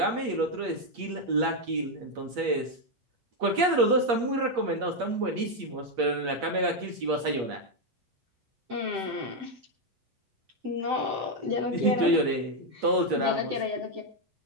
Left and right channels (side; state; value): left; late; 8.4 ms